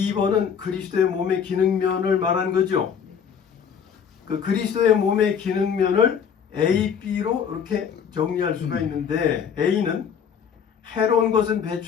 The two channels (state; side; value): quieter; right; 7.4 dB